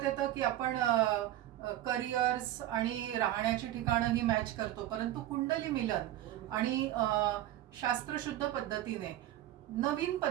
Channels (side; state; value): left; quieter; 13.6 dB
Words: येतं की आपण करिअर्स आणि राहण्याची ठिकाणं ही मॅच करतो, परंतु कुंडली मिलन आणि शास्त्रशुद्ध पद्धतीने नवीन